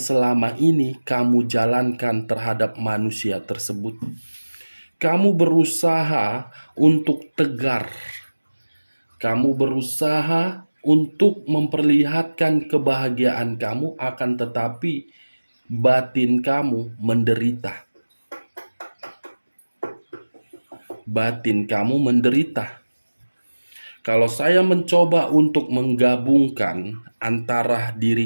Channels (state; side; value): inverted; both; correlation -1.00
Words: ini kamu jalankan terhadap manusia tersebut. Kamu berusaha untuk tegar. Kamu berusaha untuk memperlihatkan kebahagiaan kamu, akan tetapi batin kamu menderita. Batin kamu menderita. Kalau saya mencoba untuk menggabungkan antara